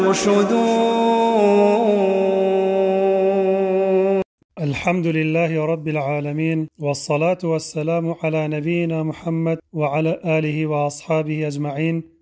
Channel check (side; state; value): both; identical; correlation 1.00